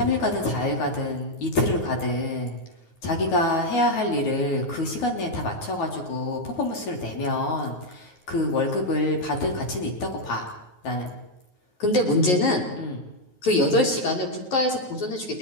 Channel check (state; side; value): late; right; 9.4 ms